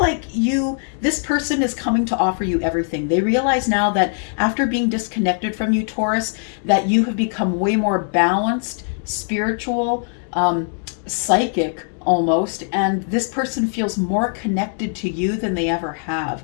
this person is coming to offer you everything. They realize now that after being disconnected from you, Taurus, that you have become way more balanced, spiritual, psychic, almost, and this person feels more connected to you than they ever have.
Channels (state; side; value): silent; right; 57 dB below the other